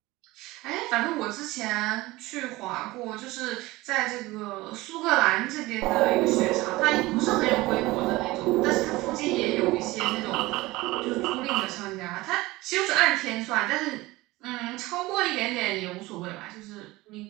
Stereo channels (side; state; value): left; quieter; 19.9 dB